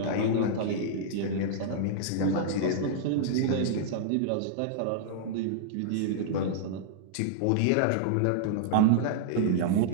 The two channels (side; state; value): both; different; correlation -0.01